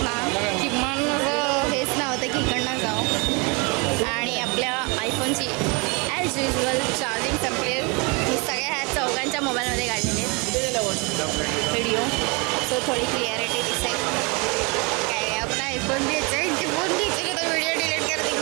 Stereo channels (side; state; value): left; quieter; 30.0 dB